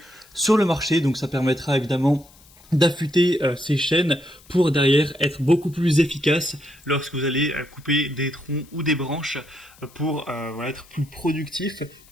sur le marché. Donc ça permettra évidemment d'affûter ces chaînes pour derrière être beaucoup plus efficace lorsque vous allez couper des troncs ou des branches pour voilà, être plus productif.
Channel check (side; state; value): left; noise; hiss, 26 dB below the sound